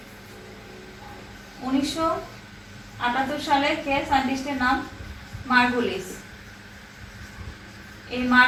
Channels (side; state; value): both; identical; correlation 1.00